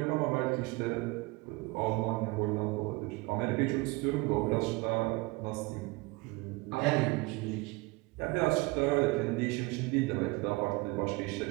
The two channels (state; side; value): quieter; left; 24.1 dB